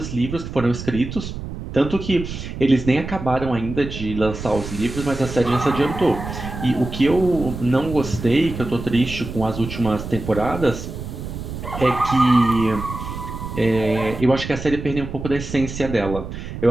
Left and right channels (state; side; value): noise; right; rumble, 8 dB below the sound